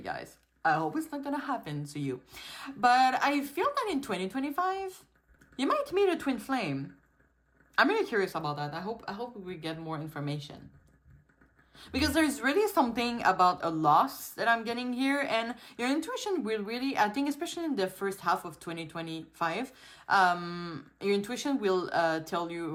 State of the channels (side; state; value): both; identical; correlation 1.00